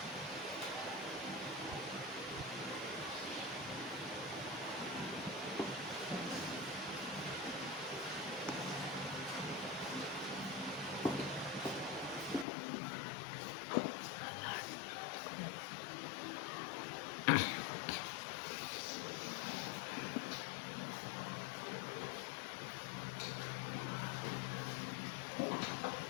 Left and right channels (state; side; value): drops out; right; at 12.5 s